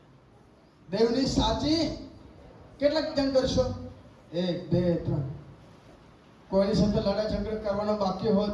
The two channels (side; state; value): both; identical; correlation 1.00